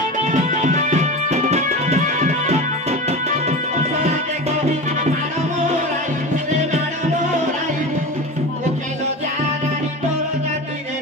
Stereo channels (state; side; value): normal; both; correlation 0.28